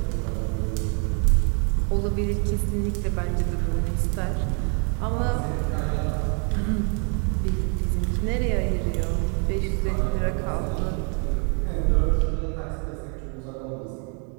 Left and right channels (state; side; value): quieter; left; 39.6 dB